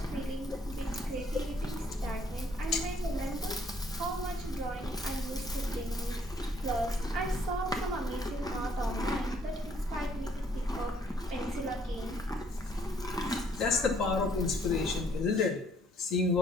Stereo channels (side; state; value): both; normal; correlation 0.64